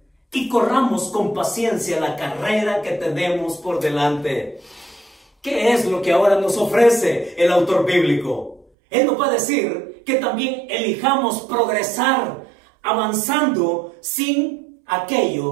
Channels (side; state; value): left; drops out; at 8.7 s